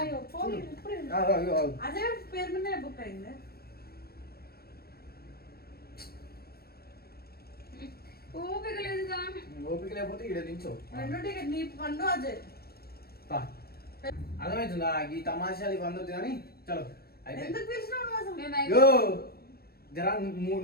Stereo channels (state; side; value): late; right; 0.45 ms